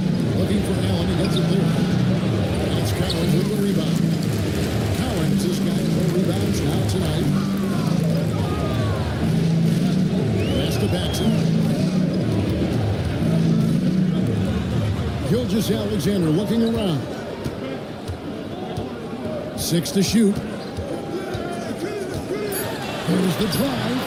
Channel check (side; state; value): both; identical; correlation 1.00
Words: Looking for Allen. He gets it there. And it's Cowens with the rebound. Cowens has got 4 rebounds now tonight. Pass to Paxson. Gilgeous Alexander looking around. 6 to shoot. Here's the drive.